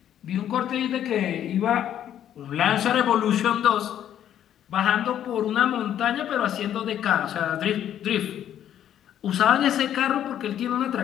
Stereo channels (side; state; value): right; quieter; 10.5 dB